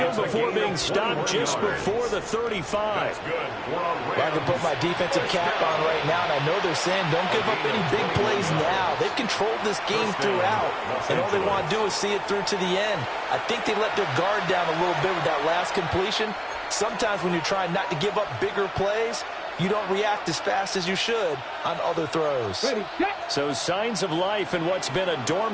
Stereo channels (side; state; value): both; identical; correlation 1.00